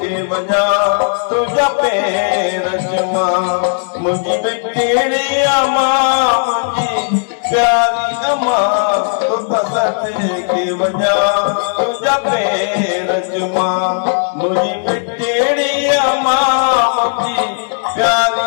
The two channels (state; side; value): silent; right; digital silence